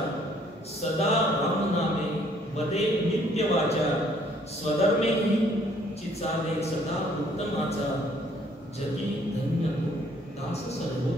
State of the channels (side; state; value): both; normal; correlation 0.62